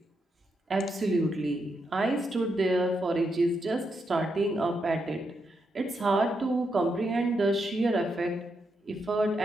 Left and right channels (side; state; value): both; normal; correlation 0.82